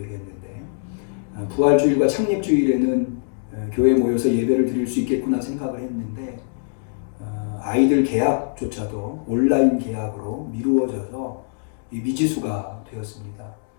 부활주일과 창립주일에는 교회에 모여서 예배를 드릴 수 있겠구나 생각을 했는데 아이들 계약조차도 온라인 계약으로 미루어져서 미지수가 되었습니다.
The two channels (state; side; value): silent; right; digital silence